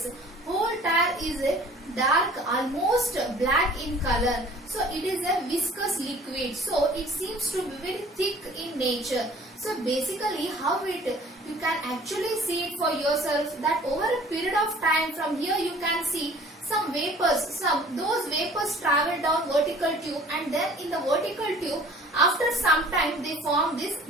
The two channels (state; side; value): normal; both; correlation 0.50